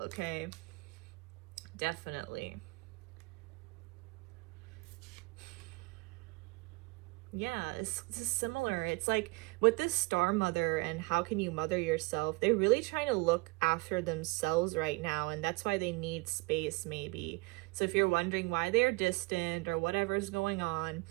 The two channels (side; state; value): left; quieter; 26.3 dB